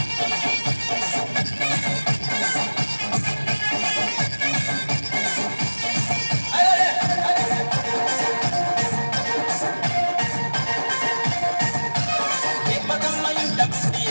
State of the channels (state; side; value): inverted; both; correlation -1.00